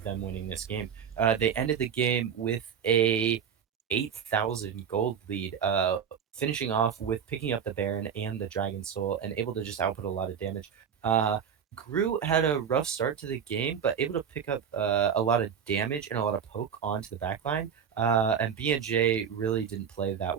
them winning this game. They ended the game with a 8,000 gold lead, finishing off with picking up the Baron and the Dragon Soul, and able to just output a lot of damage. Groot had a rough start to the game, but able to pick up a lot of damage and a lot of poke onto the backline. And BNJ really didn't play that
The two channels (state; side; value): quieter; left; 7.7 dB